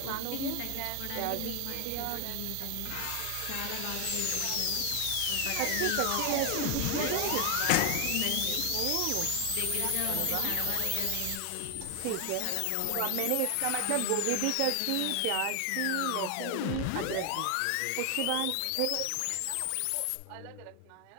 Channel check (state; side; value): different; both; correlation 0.00